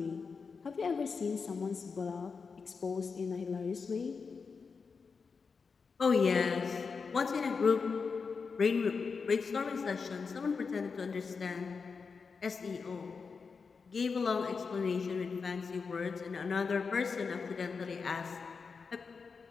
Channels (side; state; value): right; quieter; 5.1 dB